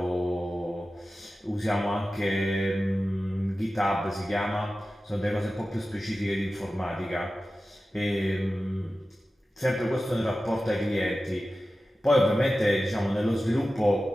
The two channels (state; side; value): normal; both; correlation 0.94